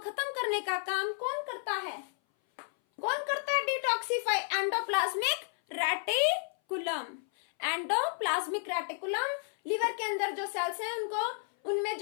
करने का काम कौन करता है, कौन करता है, detoxify, endoplasmic reticulum. Endoplasmic reticulum liver के अंदर जो सेल्स हैं उनको, उनमें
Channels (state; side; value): silent; right; 57 dB below the other